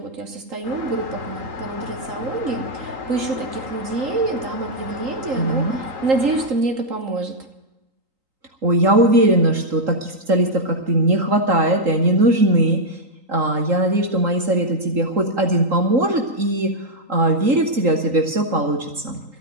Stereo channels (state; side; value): late; left; 3.8 ms